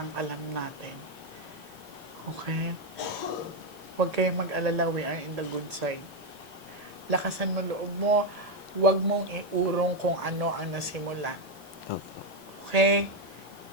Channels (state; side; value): noise; right; hiss, 25 dB below the sound